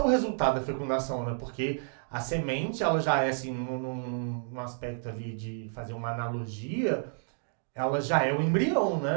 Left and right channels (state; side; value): silent; left; digital silence